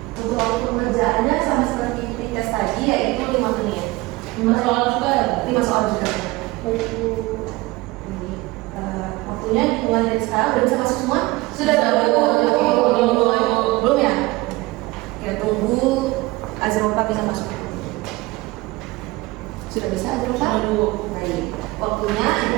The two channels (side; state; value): left; quieter; 21.2 dB